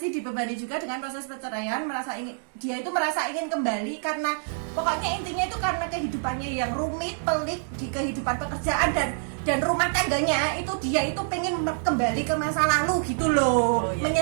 dibebani juga dengan proses perceraian, dia itu merasa ingin kembali karena pokoknya intinya itu karena kehidupannya yang rumit, pelik di kehidupan pekerjaan dan rumah tangganya itu dia itu pengen kembali ke masa lalu gitu loh.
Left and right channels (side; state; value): left; silent; digital silence